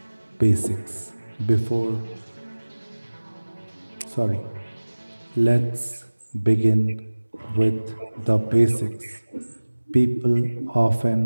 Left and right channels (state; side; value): inverted; both; correlation -1.00